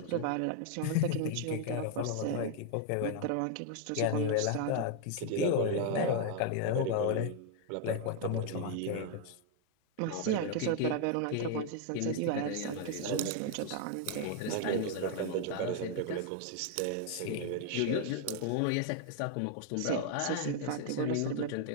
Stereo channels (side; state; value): both; different; correlation 0.00